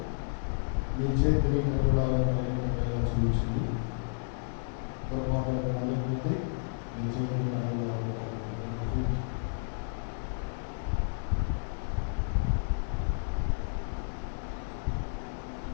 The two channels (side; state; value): right; silent; digital silence